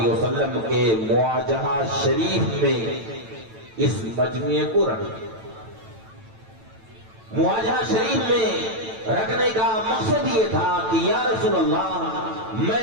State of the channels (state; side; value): late; left; 9.0 ms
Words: وسلم کے مواجہہ شریف میں اس مجموعے کو رکھے. مواجہہ شریف میں رکھنے کا مقصد یہ تھا کہ یا رسول اللہ